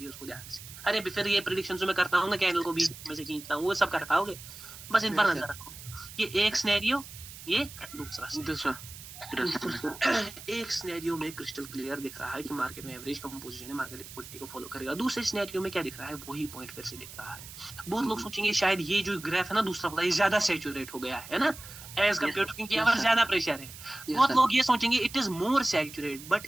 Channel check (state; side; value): noise; right; hiss, 14 dB below the sound